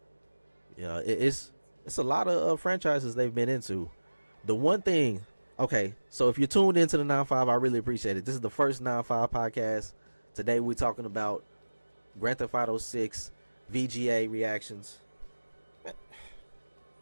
Yeah, it's a lot of franchises they've been into. The one thing, okay, so if you're tuned into the 9-5, I really appreciate it. This is the first 9-5 podcast. Today we're talking about Grand Theft Auto 6 VGA reactions.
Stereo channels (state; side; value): inverted; both; correlation -1.00